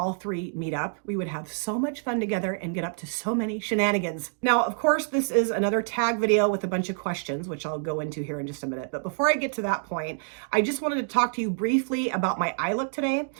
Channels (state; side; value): silent; left; digital silence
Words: three meet up. We would have so much fun together and get up to so many shenanigans. Now, of course, this is another tag video with a bunch of questions, which I'll go into here in just a minute. But before I get to that point, I just wanted to talk to you briefly about my eye look today.